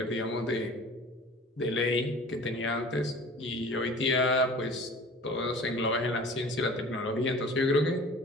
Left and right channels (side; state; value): both; normal; correlation 0.43